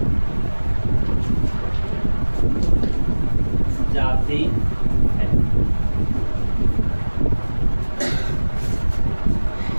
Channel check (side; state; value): both; inverted; correlation -1.00